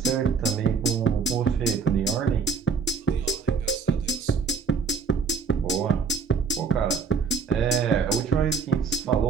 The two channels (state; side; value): quieter; left; 5.3 dB